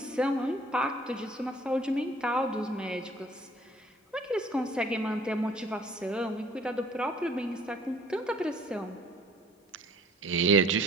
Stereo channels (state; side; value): normal; both; correlation 0.55